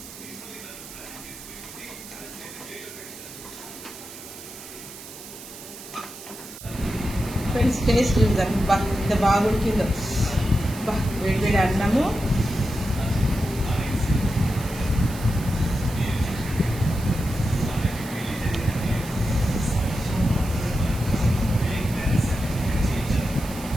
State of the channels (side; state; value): right; noise; hiss, 15 dB below the sound